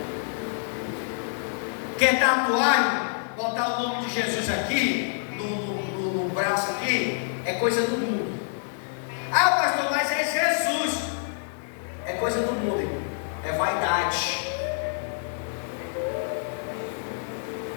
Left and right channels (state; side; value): silent; right; digital silence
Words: Quer tatuar, botar o nome de Jesus aqui, no braço aqui, é coisa do mundo. Ah, pastor, mas é Jesus. É coisa do mundo, irmão. É vaidade.